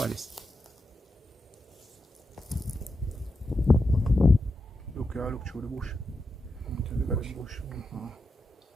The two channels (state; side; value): normal; both; correlation 0.87